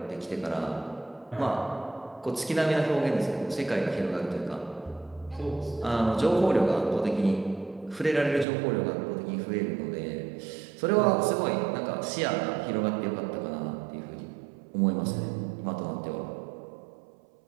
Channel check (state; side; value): drops out; left; at 8.5 s